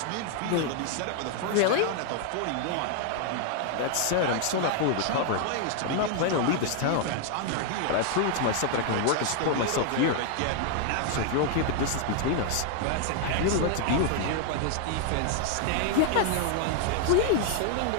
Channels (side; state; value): both; different; correlation 0.00